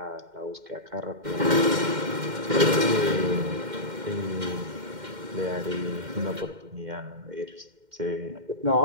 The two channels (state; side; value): late; left; 2.1 ms